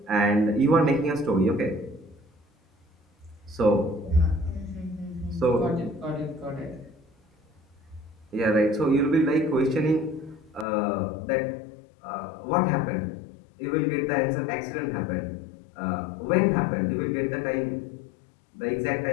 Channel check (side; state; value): right; drops out; at 10.7 s